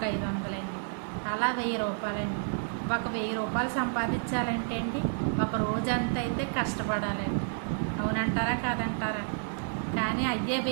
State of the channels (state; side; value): silent; left; digital silence